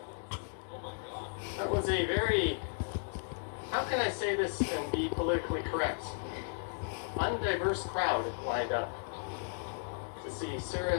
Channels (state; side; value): silent; right; digital silence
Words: That was a very, how can I say this and be politically correct? Undiverse crowd lined up to see